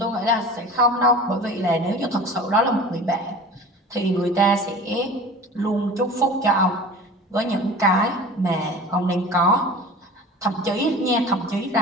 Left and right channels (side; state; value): both; normal; correlation 0.38